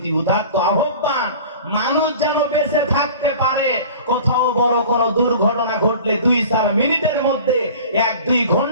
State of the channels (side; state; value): both; inverted; correlation -0.41